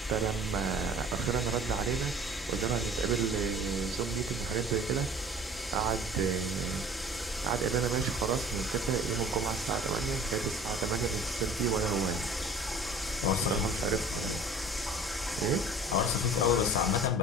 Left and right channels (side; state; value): both; normal; correlation 0.46